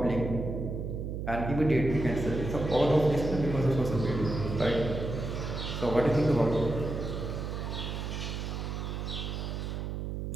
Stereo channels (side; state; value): right; noise; hum, 4 dB below the sound